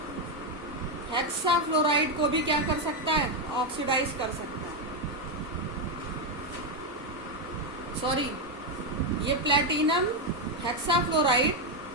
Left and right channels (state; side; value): normal; both; correlation 0.05